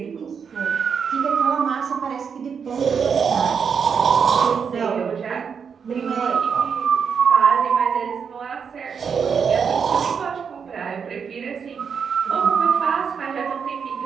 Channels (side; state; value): left; quieter; 6.5 dB